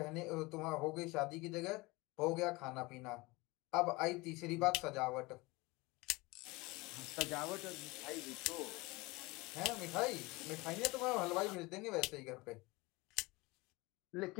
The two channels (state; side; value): quieter; right; 23.3 dB